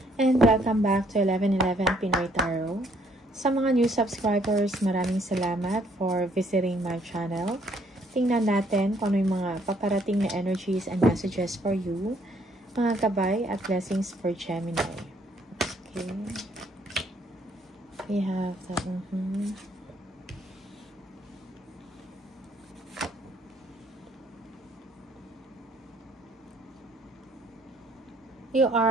And welcome back to 1111 Pinoy Tarot. Sa mga new subscribers, maraming salamat for visiting my channel. Tingnan natin kung ano yung mga paparating na energies and messages for you. Mga gabay at blessings for Gemini. Okay. We have the... You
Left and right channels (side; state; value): both; normal; correlation 0.66